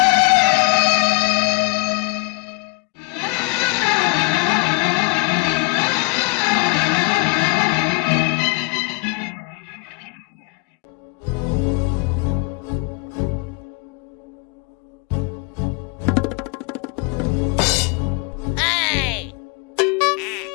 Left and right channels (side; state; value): right; quieter; 30.5 dB